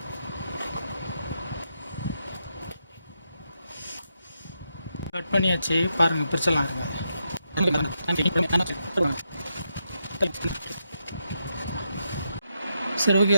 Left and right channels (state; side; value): inverted; both; correlation -0.83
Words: கட் பண்ணியாச்சு, பாருங்கள், பிரிச்சிடலாம். இருங்க. சரி ஓகே,